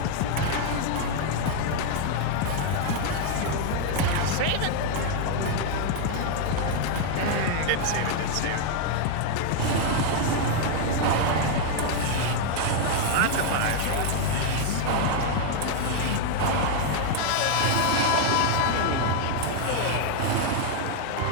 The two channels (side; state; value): both; different; correlation 0.00